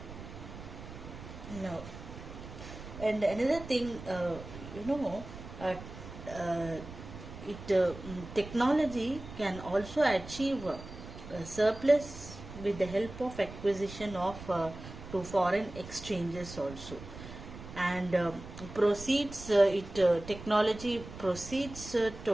now, and another thing, you know uh, uh, technology can also achieve a surplus with the help of acquisition of to foreign exchanges also, and proceeds it technology proceeds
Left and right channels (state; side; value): noise; right; rumble, 13 dB below the sound